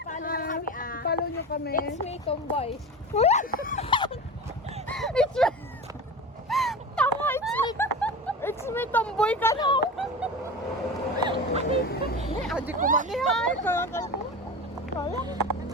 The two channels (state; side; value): normal; both; correlation 0.29